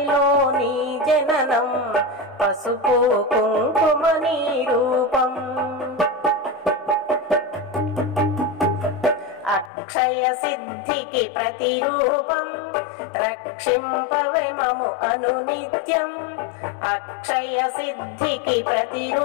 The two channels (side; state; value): right; drops out; at 9.7 s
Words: నీ జననం పసుపు కుంకుమ నీ రూపం అక్షయ సిద్ధికి ప్రతిరూపం రక్షింపవే మము అనునిత్యం అక్షయ సిద్ధికి